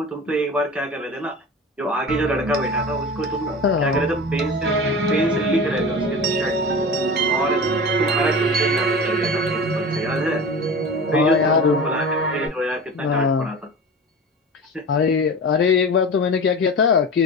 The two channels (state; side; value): normal; both; correlation 0.33